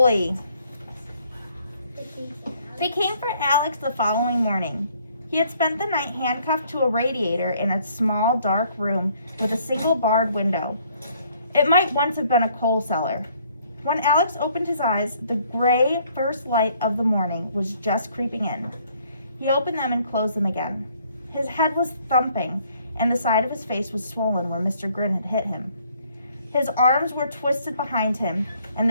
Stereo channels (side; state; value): both; inverted; correlation -0.64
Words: They came for Alex the following morning. He had spent the night handcuffed to a radiator in a small, dark room with a single barred window. It might once have been a coal cellar. When Alex opened his eyes, the gray first light of the morning was just creeping in. He opened them and closed them again. His head was thumping, and the side of his face was swollen where Mr. Grin had hit him. His arms were twisted behind him, and